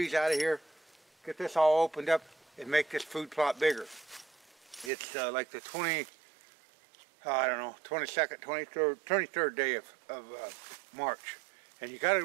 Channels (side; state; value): left; drops out; at 4.9 s